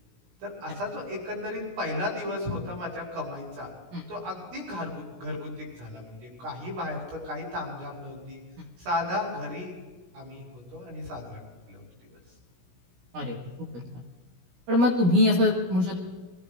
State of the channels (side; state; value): left; late; 17 ms